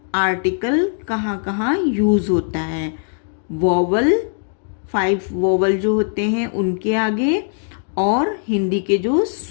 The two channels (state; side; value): silent; right; digital silence